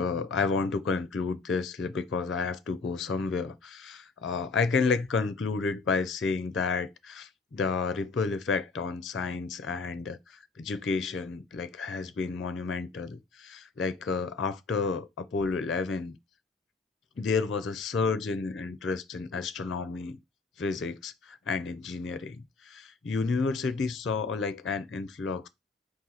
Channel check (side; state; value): right; quieter; 4.2 dB